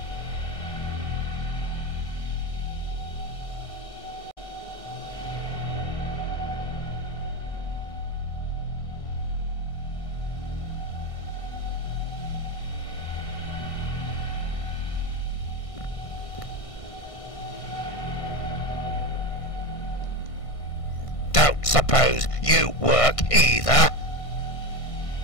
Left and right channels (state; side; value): late; right; 1.5 ms